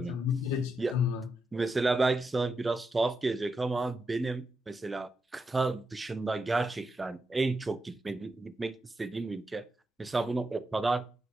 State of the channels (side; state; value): both; normal; correlation 0.85